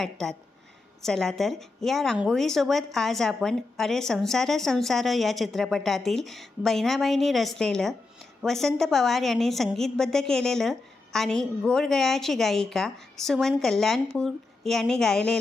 चला तर या रांगोळीसोबत आज आपण अरे संसार संसार या चित्रपटातील बहिणाबाईंनी रचलेलं, वसंत पवार यांनी संगीतबद्ध केलेलं आणि गोड गळ्याची गायिका सुमन कल्याणपूर यांनी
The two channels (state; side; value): quieter; right; 3.5 dB